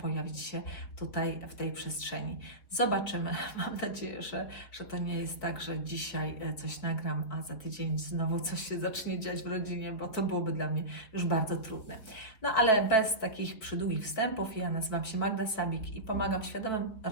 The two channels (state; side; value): late; right; 4.6 ms